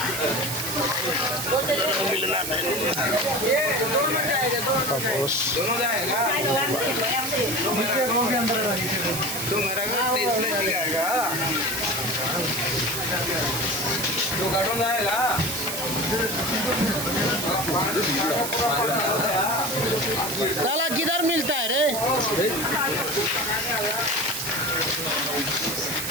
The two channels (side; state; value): right; noise; hiss, 4 dB below the sound